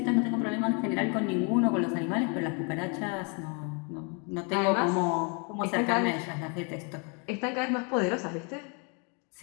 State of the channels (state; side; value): quieter; right; 35.6 dB